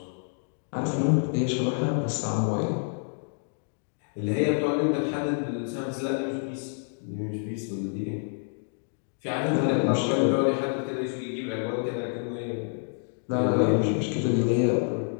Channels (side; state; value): right; silent; 59 dB below the other